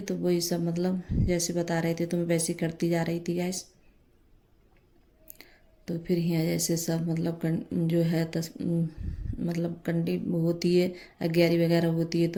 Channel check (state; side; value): identical; both; correlation 1.00